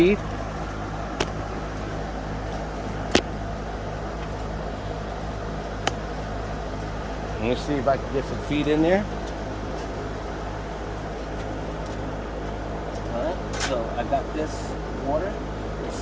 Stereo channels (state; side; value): identical; both; correlation 1.00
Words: Let me see if I can get some feed in there. Alright, so I got this water. Let's